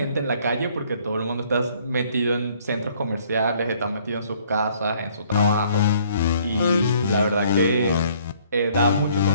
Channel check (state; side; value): inverted; both; correlation -0.61